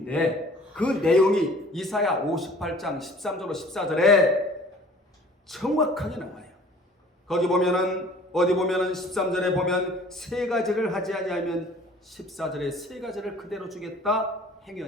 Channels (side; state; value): both; normal; correlation 0.50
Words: 그 내용이 이사야 58장 13절로 14절에 정확하게 나와요. 거기 보면은, 어디 보면은 13절에 보면 세 가지를 하지 아니하면 14절에 세 가지를 그대로 주겠다,